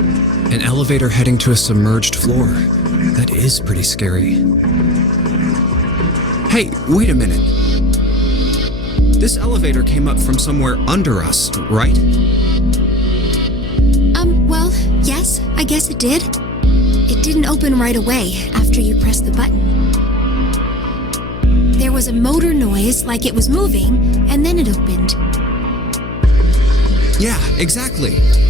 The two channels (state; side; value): noise; left; hum, 10 dB below the sound